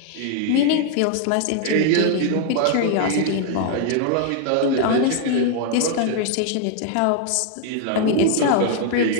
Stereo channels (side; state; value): both; different; correlation 0.00